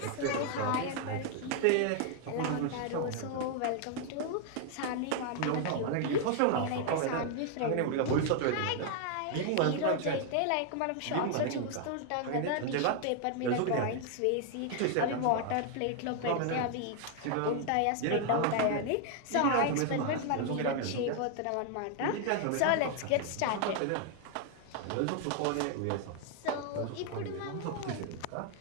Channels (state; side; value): different; both; correlation 0.00